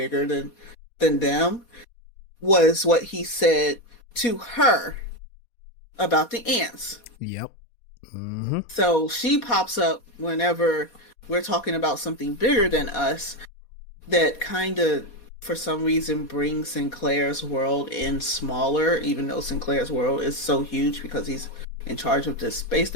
than them was what he said to her about the ants. Yep. Mm-hmm. So she pops up whenever we're talking about something bigger than us that kind of, for some reason, brings Sinclair's world in smaller, even though Sinclair's world is so huge because he's in charge of this space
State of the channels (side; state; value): right; late; 4.2 ms